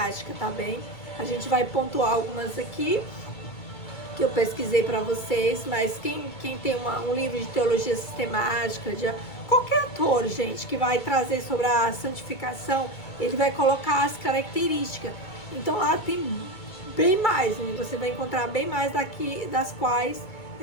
tá bem? A gente vai pontuar algumas aqui que eu pesquisei para vocês, mas quem tem um livro de teologia sistemática, de qualquer autor, gente, que vai trazer sobre a santificação, ele vai colocar as características. Então lá tem bem mais, né? Você vai encontrar bem mais daqui, das quais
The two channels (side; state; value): right; late; 2.2 ms